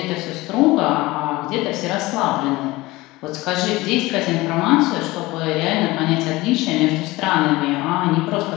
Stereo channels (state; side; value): quieter; right; 20.2 dB